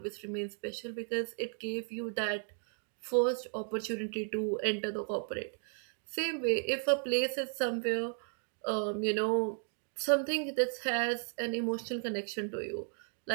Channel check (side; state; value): left; silent; 55 dB below the other